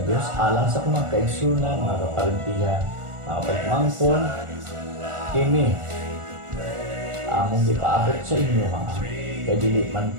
Dios alang sa mga kaigsunan, mga kaparintihan, mga pagmangkon. Kini among gipaabot sa inyo ha. Kay dili man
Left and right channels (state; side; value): late; left; 1.4 ms